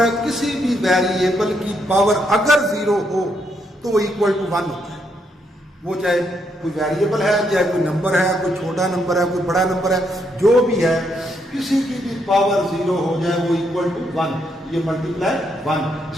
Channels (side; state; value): both; normal; correlation 0.76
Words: किसी भी वेरिएबल की पावर अगर 0 हो तो वो इक्वल टू 1 होता है। वो चाहे कोई वेरिएबल है, चाहे कोई नंबर है, कोई छोटा नंबर है, कोई बड़ा नंबर है, जो भी है, किसी की भी पावर 0 हो जाए वो इक्वल टू 1, ये मल्टीप्लाई 1।